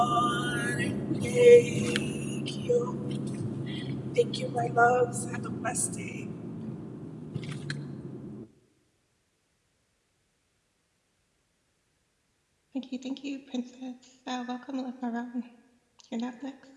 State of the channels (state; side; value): identical; both; correlation 1.00